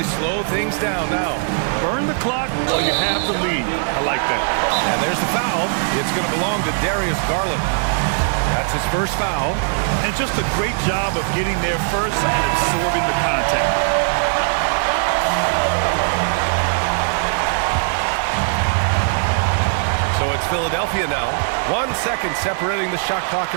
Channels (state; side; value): silent; left; digital silence